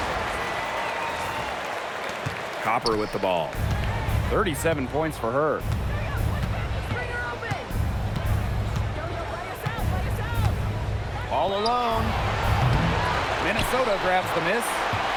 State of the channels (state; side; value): identical; both; correlation 1.00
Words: Copper with the ball. 37 points for her. All alone. Minnesota grabs the miss.